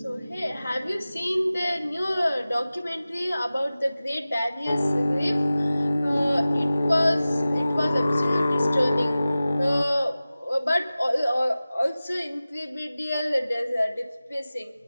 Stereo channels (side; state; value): both; inverted; correlation -0.97